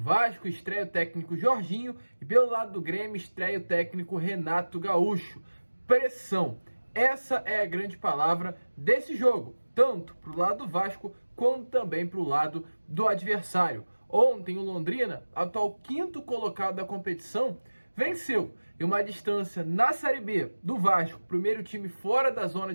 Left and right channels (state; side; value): inverted; both; correlation -1.00